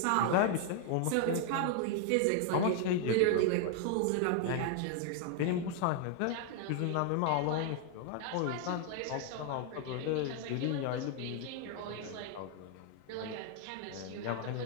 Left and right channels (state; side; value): different; both; correlation 0.00